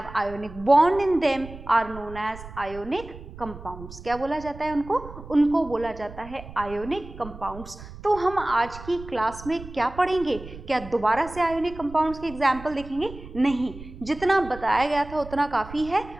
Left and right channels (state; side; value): noise; right; rumble, 15 dB below the sound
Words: ionic bond in them, are known as ionic compounds. क्या बोला जाता है उनको? उनको बोला जाता है ionic compounds. तो हम आज की क्लास में क्या पढ़ेंगे? क्या दोबारा से आयोनिक कंपाउंड्स के एग्जाम्पल देखेंगे? नहीं, जितना बताया गया था उतना काफ़ी है।